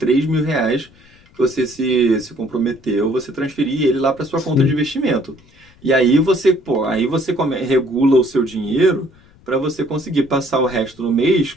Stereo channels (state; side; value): noise; left; rumble, 28 dB below the sound